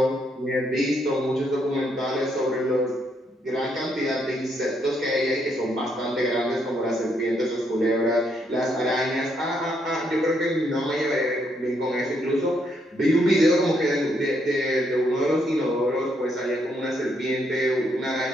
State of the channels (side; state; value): both; normal; correlation 0.75